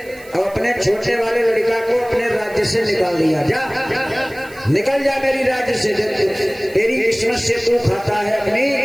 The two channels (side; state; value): right; noise; hiss, 23 dB below the sound